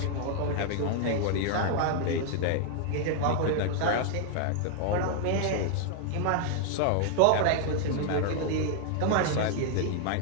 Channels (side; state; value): both; different; correlation 0.00